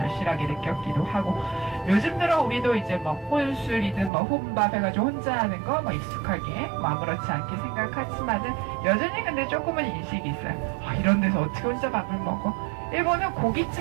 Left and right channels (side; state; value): left; drops out; at 4.1 s